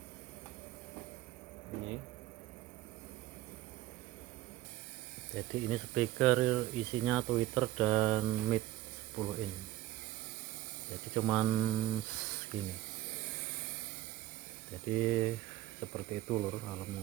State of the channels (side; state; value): left; quieter; 14.7 dB